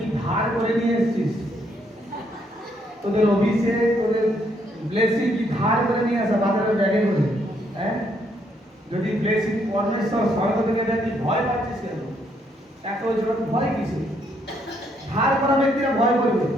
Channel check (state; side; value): normal; both; correlation 0.72